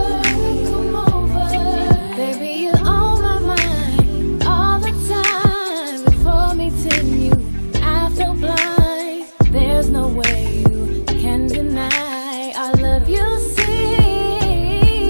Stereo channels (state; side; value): inverted; both; correlation -1.00